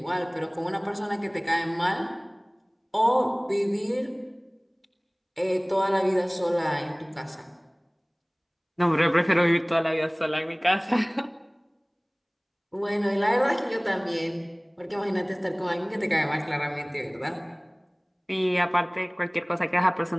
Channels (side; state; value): both; identical; correlation 1.00